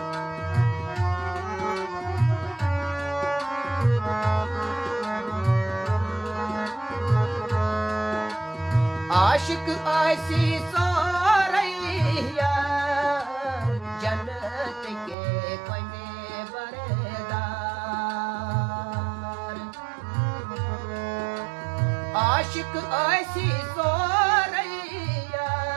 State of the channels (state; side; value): drops out; left; at 15.2 s